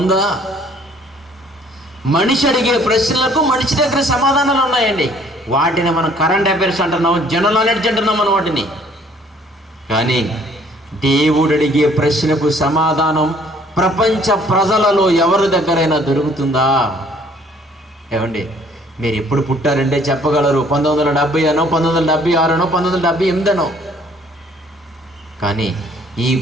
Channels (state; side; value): normal; both; correlation 0.59